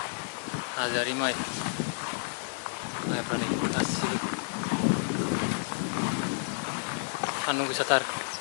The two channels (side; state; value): right; silent; digital silence